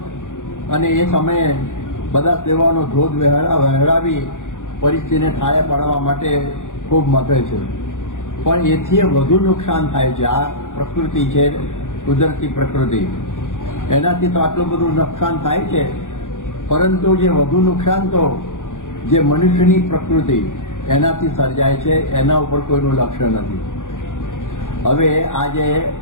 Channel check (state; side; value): late; right; 0.87 ms